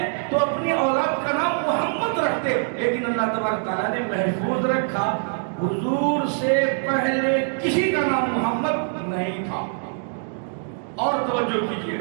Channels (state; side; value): silent; left; digital silence